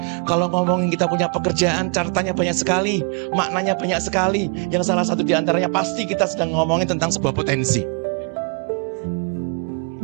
Kalau ngomongin kita punya pekerjaan, catatannya banyak sekali, maknanya banyak sekali. Yang salah satu di antaranya pasti kita sedang ngomongin tentang sebuah potensi.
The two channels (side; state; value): left; quieter; 38.1 dB